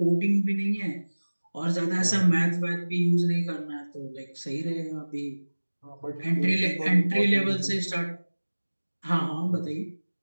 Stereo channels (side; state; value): both; inverted; correlation -1.00